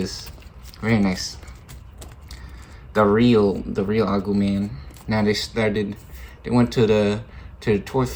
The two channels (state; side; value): identical; both; correlation 1.00